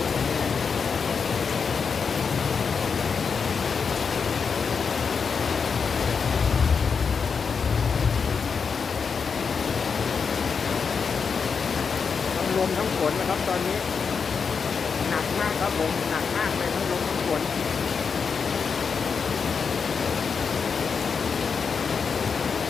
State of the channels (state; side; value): quieter; right; 5.8 dB